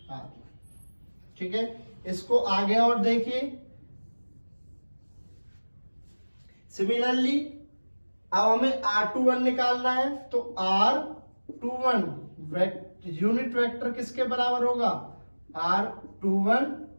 R1। ठीक है, इसको आगे और देखिए। सिमिलरली अब हमें R21 निकालना है, तो R21 यूनिट वेक्टर किसके बराबर होगा, R21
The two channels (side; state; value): both; inverted; correlation -1.00